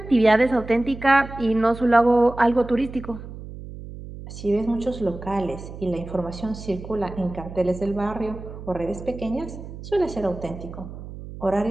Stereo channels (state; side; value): noise; right; hum, 12 dB below the sound